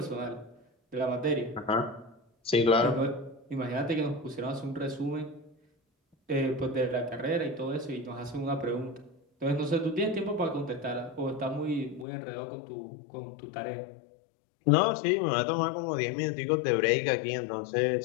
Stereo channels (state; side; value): drops out; right; at 12.1 s